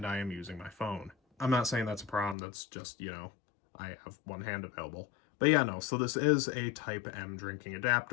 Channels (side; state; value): right; drops out; at 2.4 s